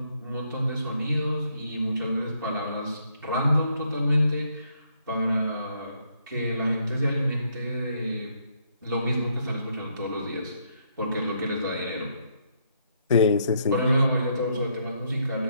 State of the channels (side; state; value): both; inverted; correlation -0.72